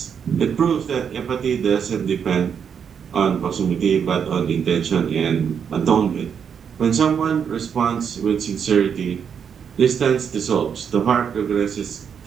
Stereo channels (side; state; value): left; quieter; 7.4 dB